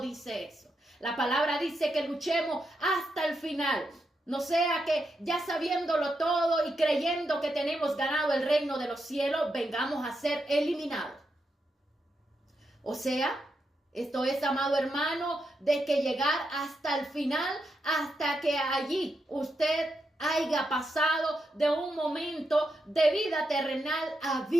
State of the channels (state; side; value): normal; both; correlation 0.84